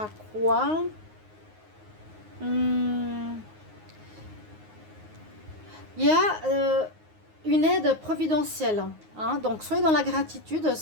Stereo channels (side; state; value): left; late; 9.5 ms